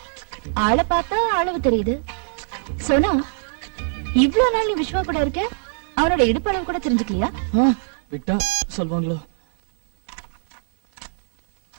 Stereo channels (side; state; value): left; silent; 64 dB below the other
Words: ஆளை பார்த்தா அளவு தெரியுது. சோனா, இவ்ளோ நாள் நீ விஸ்வா கூட இருக்க, அவனோட இடுப்பளவு கூட தெரிஞ்சுக்கலையா? விட்டா சொல்வாங்களோ?